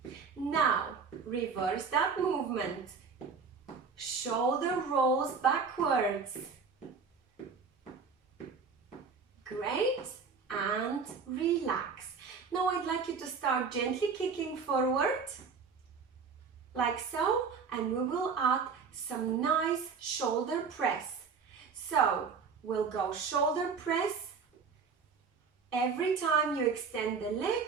Now, reverse that movement. Shoulder rolls backwards. Great, and relax. Now I'd like you to start gently kicking forward, like so, and we will add some nice shoulder press. So, we'll go shoulder press. Every time you extend the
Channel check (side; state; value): left; quieter; 5.5 dB